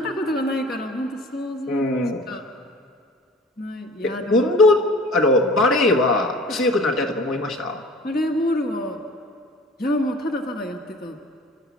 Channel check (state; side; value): normal; both; correlation 0.44